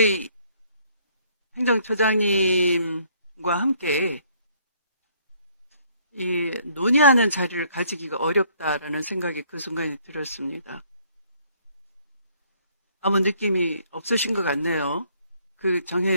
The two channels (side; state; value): both; inverted; correlation -0.63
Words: 행정처장님과 함께 이 논의하는 자리를 가지기가 어렵다라는 생각이 그 순간에 들었습니다. 아무 느낌이 없으신 것 같네요. 그